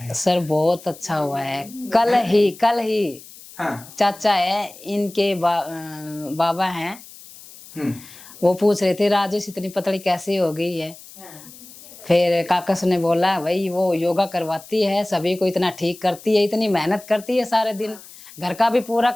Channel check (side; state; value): left; noise; hiss, 19 dB below the sound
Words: सर बहुत अच्छा हुआ है। कल ही हाँ, चाचा है इनके बाबा हैं, वो पूछ रहे थे राजेश इतनी पतली कैसे हो गई है। फिर काकस ने बोला भाई वो योगा करवाती है, सभी को इतना ठीक करती है, इतनी मेहनत करती है सारे दिन, घर का भी पूरा